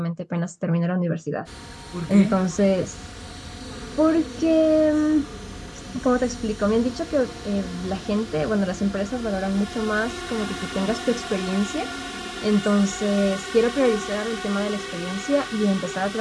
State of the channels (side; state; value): both; identical; correlation 1.00